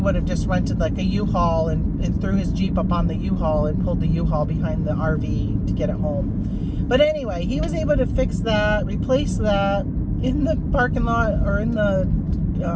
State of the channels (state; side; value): identical; both; correlation 1.00